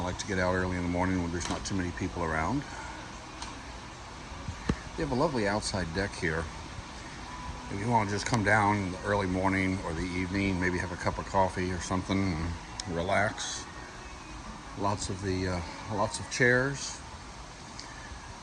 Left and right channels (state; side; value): identical; both; correlation 1.00